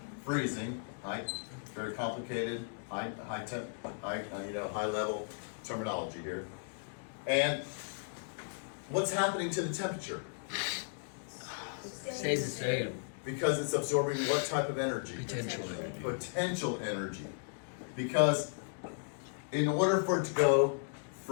Freezing. Right? Very complicated, high level terminology here. And what's happening to the temperature? Stays the same. Because it's absorbing what type of energy? Potential. Potential energy. Because in order for it to go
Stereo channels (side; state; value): right; silent; digital silence